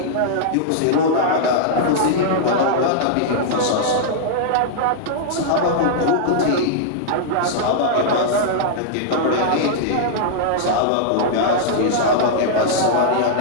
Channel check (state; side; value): different; both; correlation -0.02